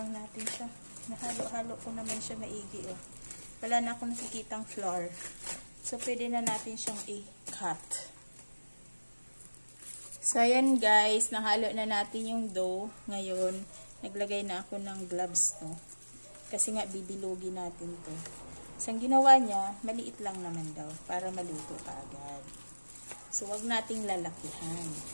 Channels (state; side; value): inverted; both; correlation -1.00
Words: natin siya. Nahalo-halo ko naman siya maigi, oh. Wala na akong nakikitang flour. So, pwede na natin siyang i-cut. So, ayan guys, nahalo na natin yung dough. Ngayon, naglagay na ako ng gloves, no? Kasi nga, bibilogin natin to. So, ang ginawa niya, maliit lang naman daw, para maluto pa agad. So, wag nating lalakihan.